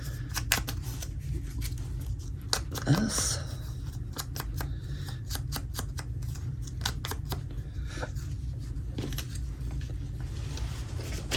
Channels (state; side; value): identical; both; correlation 1.00